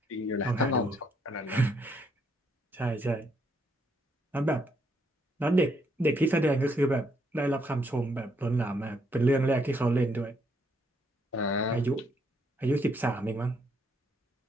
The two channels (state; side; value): normal; both; correlation 0.73